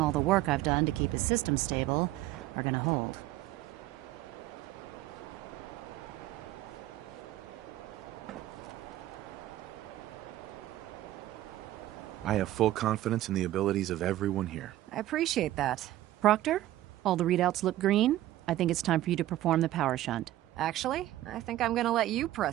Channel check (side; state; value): left; quieter; 14.7 dB